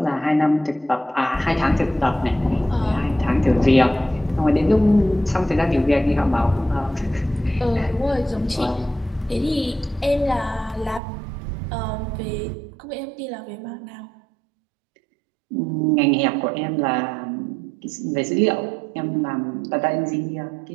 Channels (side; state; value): left; drops out; at 11.0 s